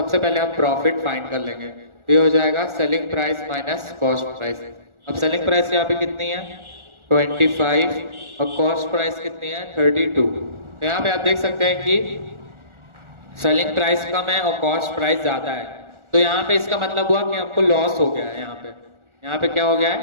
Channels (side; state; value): left; late; 1.4 ms